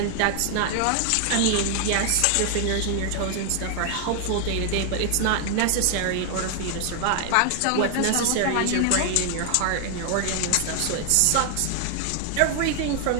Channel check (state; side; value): different; both; correlation 0.00